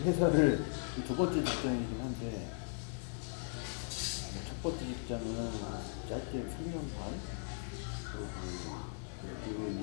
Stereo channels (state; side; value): silent; right; digital silence